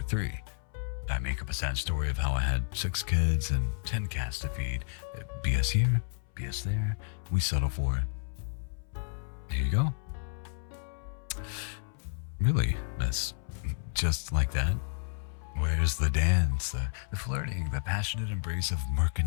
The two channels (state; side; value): silent; right; 57 dB below the other